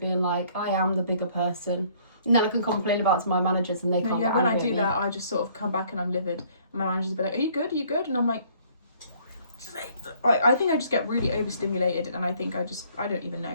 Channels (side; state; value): both; inverted; correlation -0.60